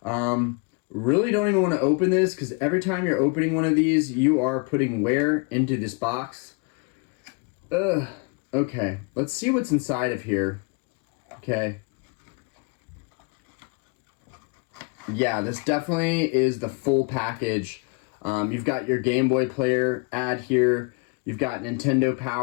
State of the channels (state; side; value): quieter; right; 32.1 dB